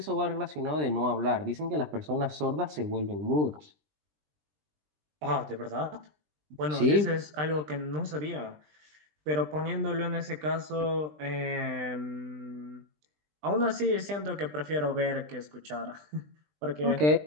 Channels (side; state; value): left; late; 20 ms